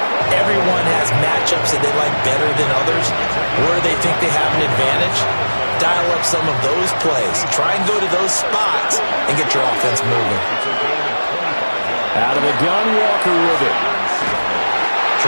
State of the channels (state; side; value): inverted; both; correlation -1.00